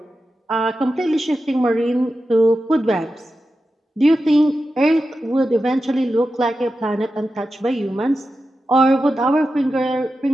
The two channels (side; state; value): both; normal; correlation 0.91